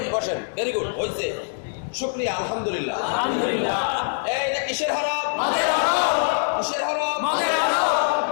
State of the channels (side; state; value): right; silent; digital silence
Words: বসেন, ভেরি গুড, হয়েছে, শুকরিয়া, আলহামদুলিল্লাহ। এইটা কিসের হরফ? কিসের হরফ?